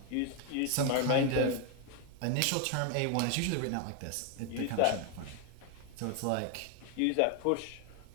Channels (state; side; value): different; both; correlation 0.01